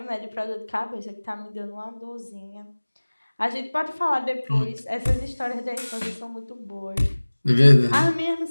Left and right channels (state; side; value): inverted; both; correlation -1.00